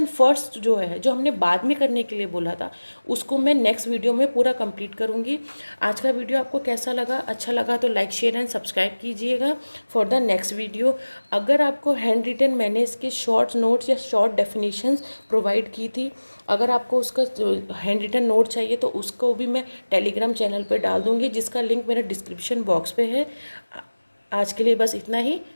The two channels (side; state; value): both; inverted; correlation -1.00